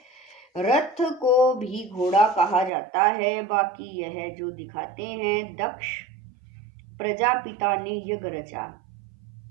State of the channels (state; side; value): drops out; left; at 2.7 s